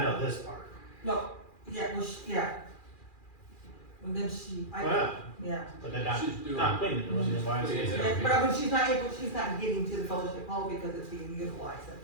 I know this part. No, yeah, well, yeah. And then she, Well, yeah. but they're not, She's doing. not cleaning, doing the YMCA. Yeah. Yeah, but I mean, she's not able, she's not getting to the fellowship hall because it's being utilized at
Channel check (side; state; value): right; late; 2.4 ms